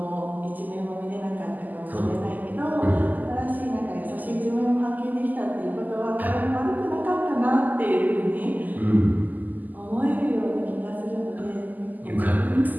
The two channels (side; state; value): left; late; 0.083 ms